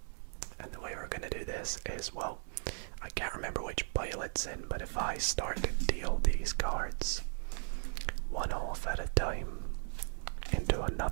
And the way we're going to do this is, well, I can't remember which pile it's in, but if I start to deal these cards one off at a time into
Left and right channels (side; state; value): left; silent; 53 dB below the other